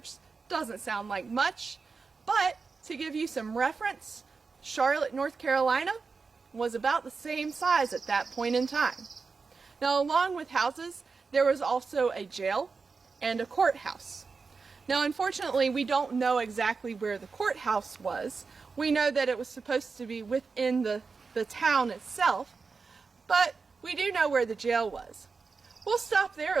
doesn't sound like much, but to give you some reference, Charlotte, North Carolina was about the same size at that point in time. Now, along with houses, there was also a jail and a courthouse. Now, unfortunately, we don't know exactly where the courthouse was. We know that it was supposed to be within the town itself, but we do know where the jail was. We'll stop there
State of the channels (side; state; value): left; quieter; 4.7 dB